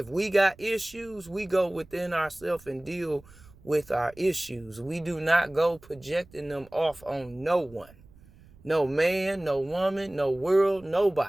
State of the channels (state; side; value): noise; right; rumble, 25 dB below the sound